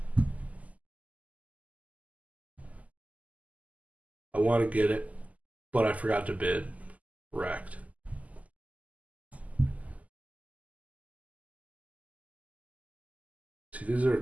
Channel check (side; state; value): left; late; 0.074 ms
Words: I want to get it, but I forgot to bid. Wrecked. See, these